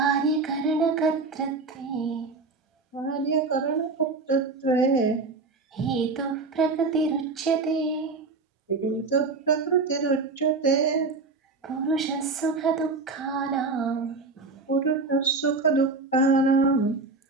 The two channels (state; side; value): quieter; left; 3.9 dB